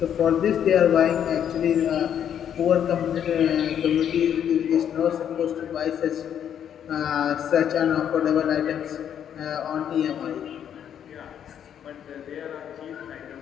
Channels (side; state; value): right; quieter; 9.2 dB